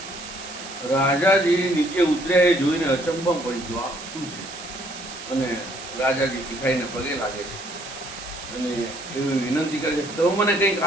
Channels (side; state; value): right; noise; hiss, 12 dB below the sound